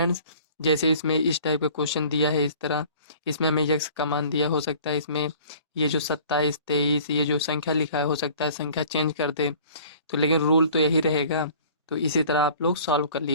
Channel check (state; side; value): inverted; both; correlation -0.49